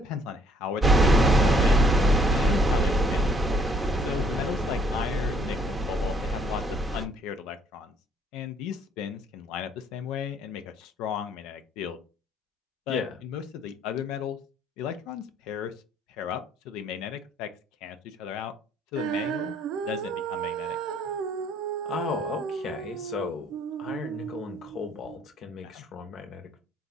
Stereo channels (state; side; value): normal; both; correlation 0.63